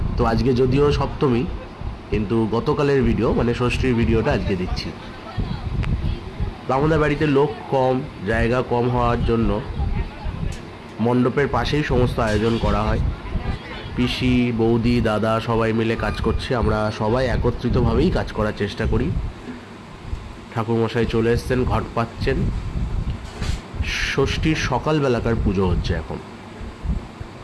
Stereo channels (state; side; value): identical; both; correlation 1.00